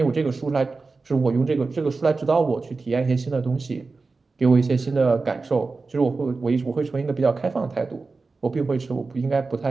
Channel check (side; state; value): left; quieter; 4.0 dB